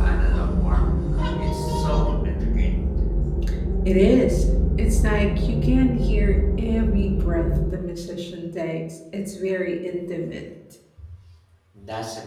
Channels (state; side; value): identical; both; correlation 1.00